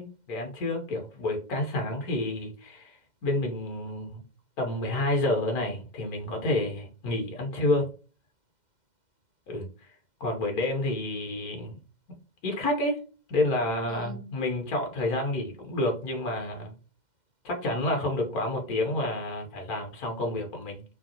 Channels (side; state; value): right; late; 2.1 ms